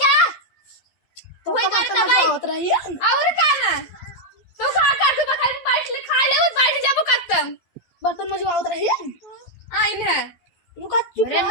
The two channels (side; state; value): right; late; 11 ms